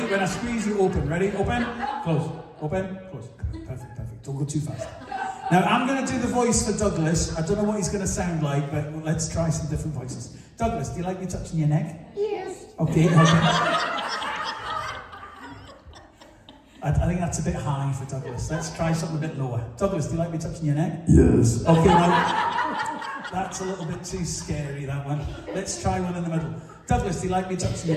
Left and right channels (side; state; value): both; identical; correlation 1.00